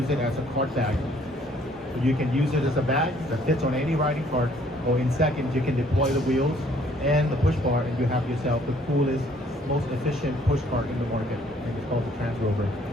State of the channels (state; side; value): normal; both; correlation 0.62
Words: it as a cart bag. You can use it as a bag that fits on any riding cart, or in seconds you can deploy the wheels and the push bar, and you have yourself the coolest, most efficient push cart in the market, and it's called the Transrover.